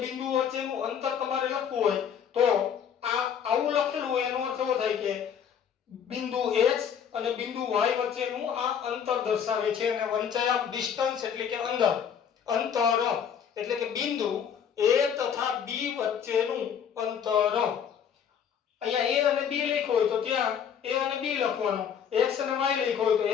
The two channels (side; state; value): right; quieter; 8.0 dB